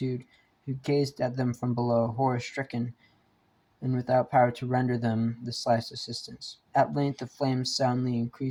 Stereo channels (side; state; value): both; identical; correlation 1.00